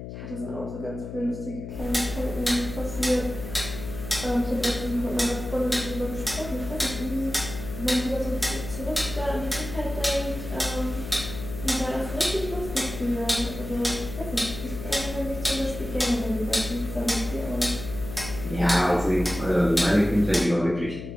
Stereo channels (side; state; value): left; noise; hum, 9 dB below the sound